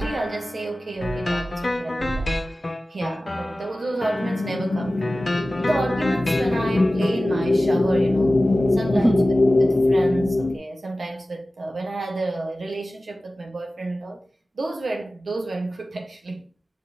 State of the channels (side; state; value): both; normal; correlation 0.96